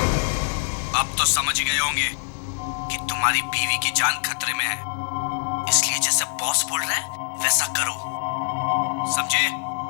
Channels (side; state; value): right; silent; digital silence